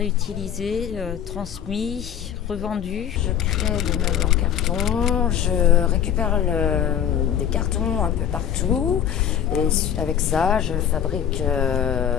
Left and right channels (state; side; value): quieter; right; 9.4 dB